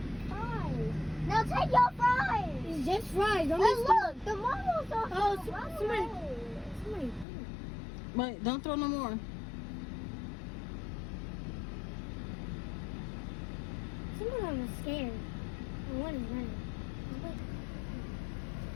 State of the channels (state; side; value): drops out; right; at 7.2 s